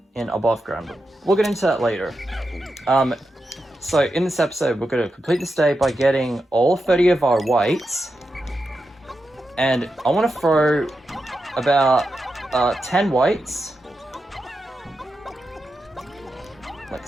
in above ground. We'll get into that later. So in this episode, we're going to complete this day by getting all 30 of our whites, and I want to throw about 10 whites, like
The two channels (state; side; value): normal; both; correlation 0.88